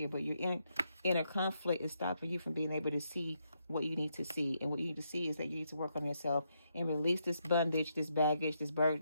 but your inner conflict is stopping you from being able to see what you need to see. And what you need to see is that you need to work on yourself and release this bondage, this baggage, this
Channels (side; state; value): both; inverted; correlation -0.79